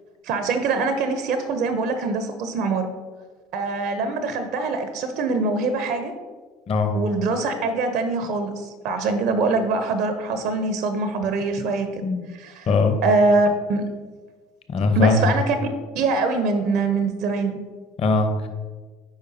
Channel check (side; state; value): both; normal; correlation 0.45